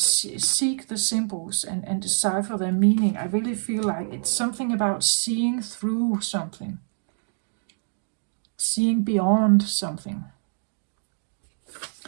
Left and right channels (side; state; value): left; silent; digital silence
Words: seek the symbols and decipher their meaning. I really feel like it's something about seeing through something, seeing beyond something.